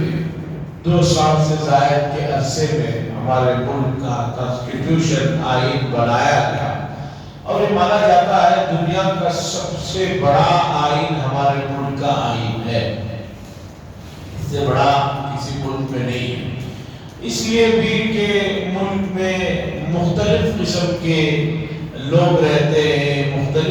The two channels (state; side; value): identical; both; correlation 1.00